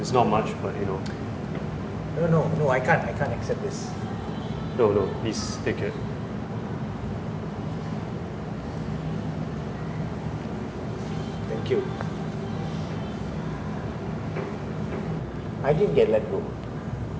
It's not much, but you know. No, I can't accept this. No, please take it. Thank you. I didn't get let go.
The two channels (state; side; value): identical; both; correlation 1.00